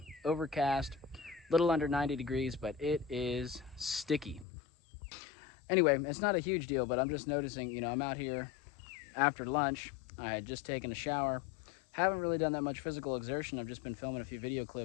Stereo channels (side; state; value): right; drops out; at 4.5 s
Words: overcast, little under 90 degrees, but it is sticky. Anyway, it's not a huge deal, but I'm just noticing, you know, I'm out here after lunch. I had just taken a shower. Haven't really done that much physical exertion. I've just been filming a few video